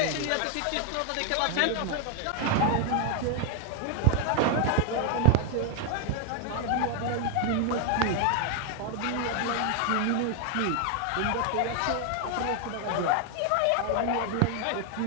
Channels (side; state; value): both; different; correlation 0.00